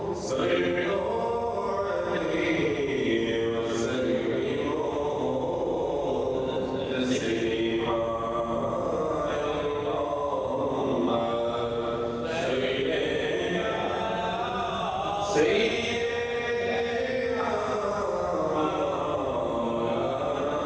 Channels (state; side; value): identical; both; correlation 1.00